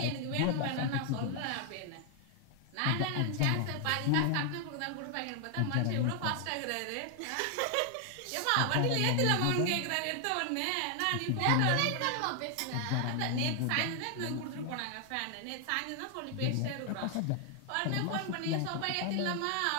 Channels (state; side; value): different; both; correlation 0.00